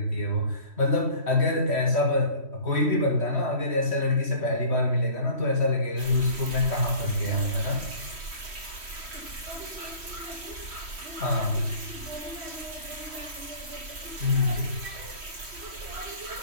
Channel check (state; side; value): late; left; 3.1 ms